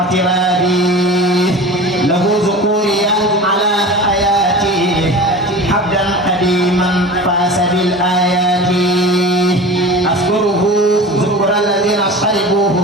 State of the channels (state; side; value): normal; both; correlation 0.34